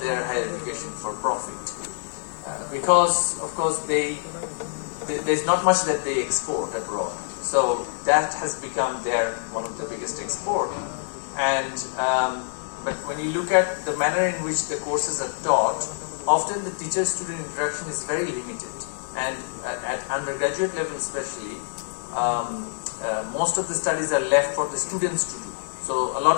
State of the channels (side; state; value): right; silent; 61 dB below the other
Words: higher education for profit. Because, of course, there's not much that they export abroad. So that has become one of the biggest export. And but when you look at the manner in which the courses are taught, often the teacher-student interaction is very limited. And at undergraduate level especially, most of the studies are left for the students to do. So a lot